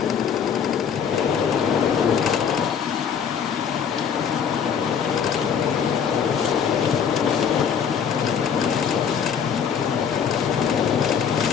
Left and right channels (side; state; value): right; quieter; 7.4 dB